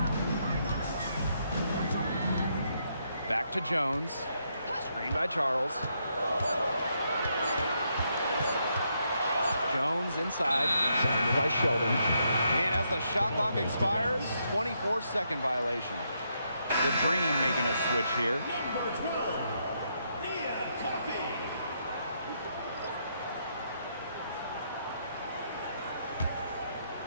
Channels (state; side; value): inverted; both; correlation -0.77